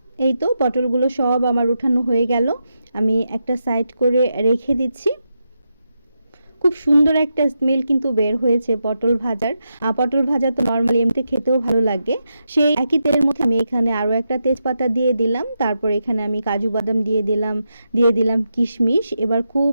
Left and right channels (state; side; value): inverted; both; correlation -0.86